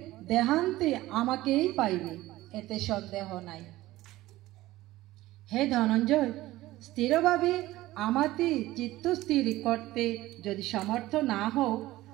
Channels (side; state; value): left; quieter; 16.9 dB